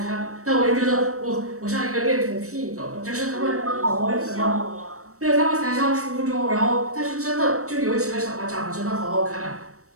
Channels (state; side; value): late; left; 0.65 ms